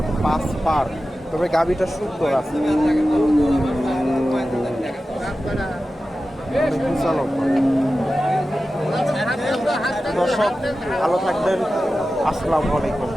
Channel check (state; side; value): normal; both; correlation 0.94